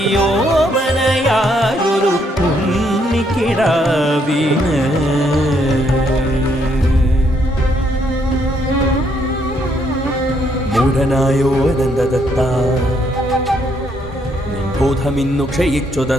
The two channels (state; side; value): normal; both; correlation 0.72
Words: ഉണ്ണിക്കിടാവിന്. മൂഢനായോ അനന്തദത്ത, ബോധമിന്നു ക്ഷയിച്ചു